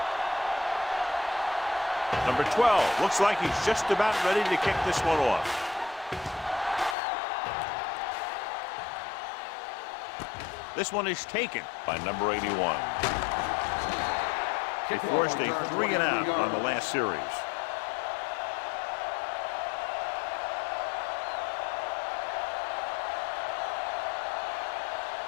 Number 12 looks like he's just about ready to kick this one off. This one is taken by number 81. They forced a 3-and-out on the last series.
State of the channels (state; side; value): drops out; right; at 7.0 s